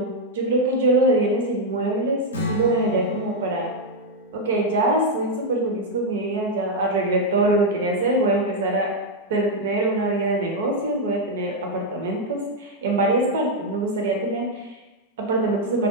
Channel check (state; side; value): normal; both; correlation 0.00